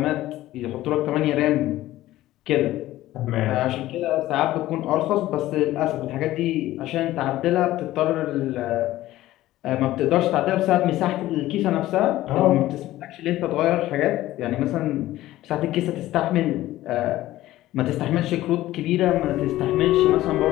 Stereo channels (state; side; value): quieter; right; 15.5 dB